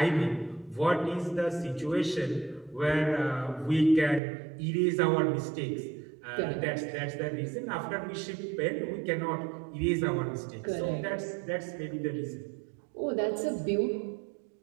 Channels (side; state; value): left; drops out; at 4.2 s